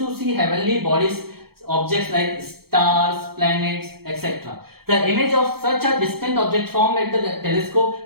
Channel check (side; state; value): left; late; 0.95 ms